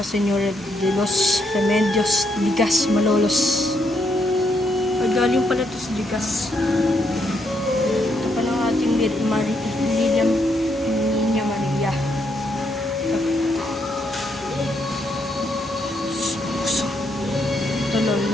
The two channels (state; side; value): normal; both; correlation 0.76